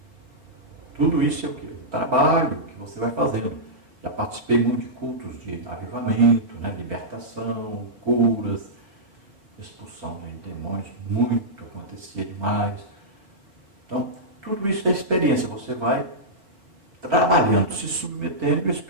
Tudo isso é o quê? O trabalho que você vai fazendo. Já participei muito de cultos de avivamento, né? Libertação, curas, expulsão de demônios, muito acontecia demais. Então, tudo isso é experiência. Você vai trabalhando, se submetendo e o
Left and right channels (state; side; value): late; left; 4.9 ms